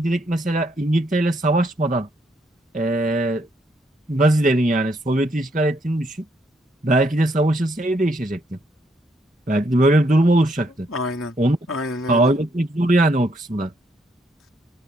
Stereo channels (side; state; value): both; normal; correlation 0.73